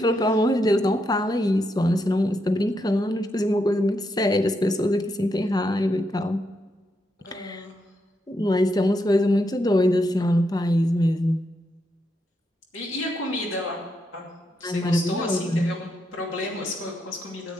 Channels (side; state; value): both; normal; correlation 0.81